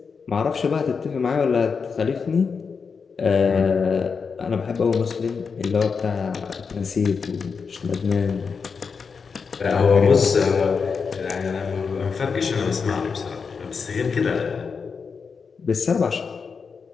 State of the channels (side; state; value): right; quieter; 5.5 dB